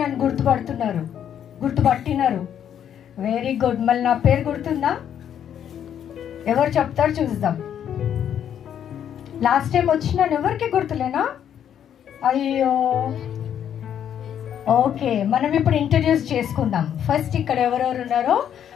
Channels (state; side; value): quieter; right; 9.4 dB